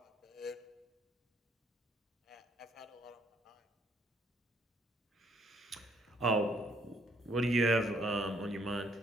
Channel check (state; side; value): normal; both; correlation 0.68